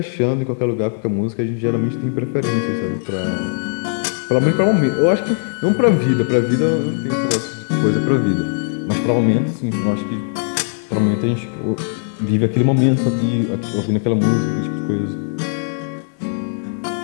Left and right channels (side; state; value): right; silent; 66 dB below the other